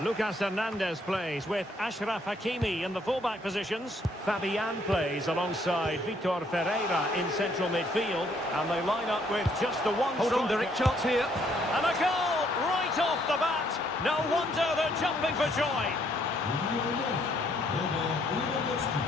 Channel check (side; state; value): both; normal; correlation 0.68